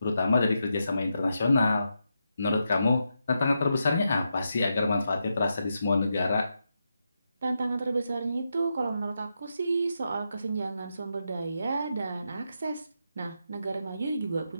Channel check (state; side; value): inverted; both; correlation -0.85